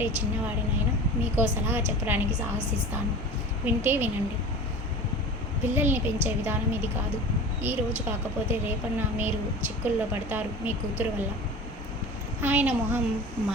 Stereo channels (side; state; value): both; normal; correlation 0.35